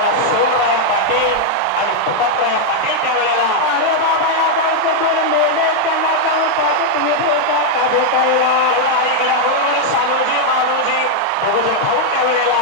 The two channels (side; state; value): both; different; correlation 0.00